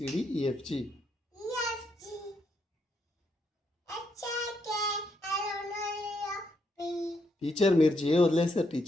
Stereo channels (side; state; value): both; normal; correlation 0.77